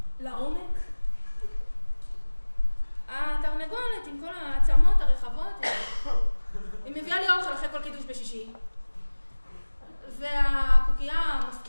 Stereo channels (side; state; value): both; inverted; correlation -1.00